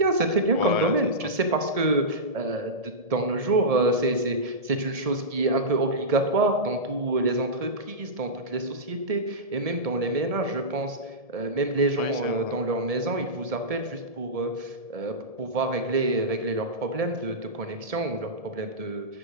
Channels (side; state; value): left; late; 1.7 ms